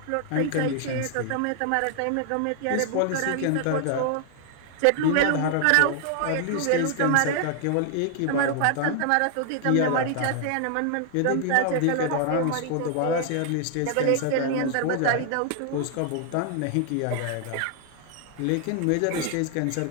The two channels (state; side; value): different; both; correlation 0.00